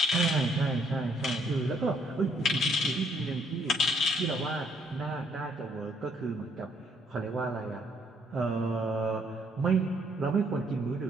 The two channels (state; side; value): normal; both; correlation 0.68